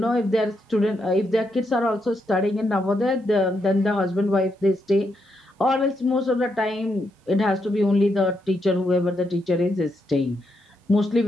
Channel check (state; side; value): normal; both; correlation 0.80